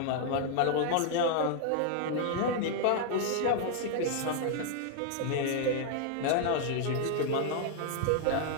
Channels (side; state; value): both; different; correlation 0.00